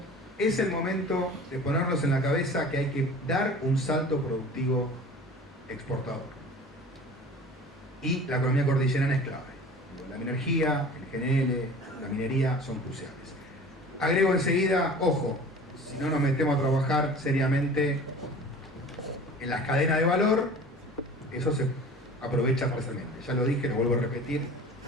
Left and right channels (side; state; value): both; normal; correlation 0.42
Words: es el momento de ponernos en la cabeza que hay que dar un salto productivo exportador. Y la economía cordillerana es clave. La energía, el GNL, la minería son cruciales. Agrego enseguida, ojo, si no nos metemos a trabajar seriamente en las cadenas de valor, eso se aprovecha parcialmente. Ya lo dije, lo vuelvo a repetir,